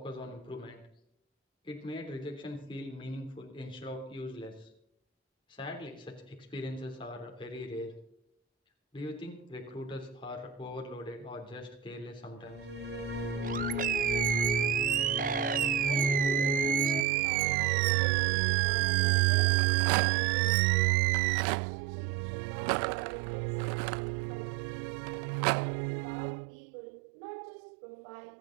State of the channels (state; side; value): drops out; left; at 17.1 s